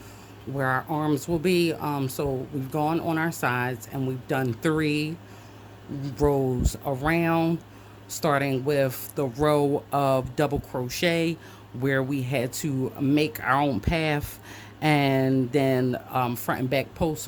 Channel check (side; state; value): both; identical; correlation 1.00